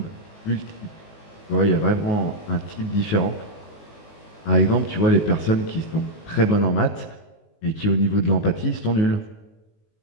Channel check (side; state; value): right; late; 19 ms